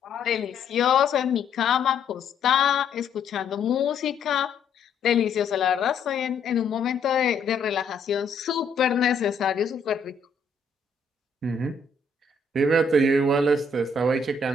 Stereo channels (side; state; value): right; quieter; 3.9 dB